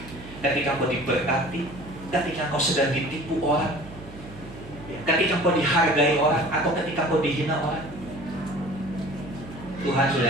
ketika kau diberkati, ketika kau sedang ditipu orang, ketika kau dihargai orang, atau ketika kau dihina orang. Tuhan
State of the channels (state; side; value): noise; right; hum, 17 dB below the sound